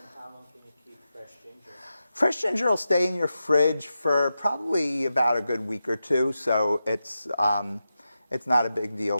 how long can you keep fresh ginger? Fresh ginger will stay in your fridge for probably about a good week or two, so it's not a big deal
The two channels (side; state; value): both; inverted; correlation -0.90